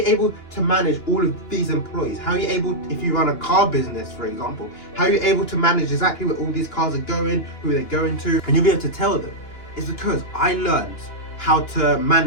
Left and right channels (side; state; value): right; late; 2.9 ms